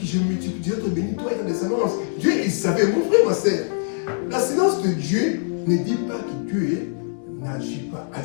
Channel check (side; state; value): right; silent; digital silence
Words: je multiplierai, te bénis, toi et ta descendance. Dieu, il savait, mon frère, ma sœur. La silence de Dieu ne dit pas que Dieu n'agit pas.